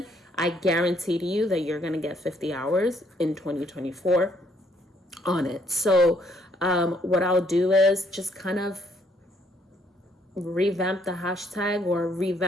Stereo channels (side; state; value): both; normal; correlation 0.68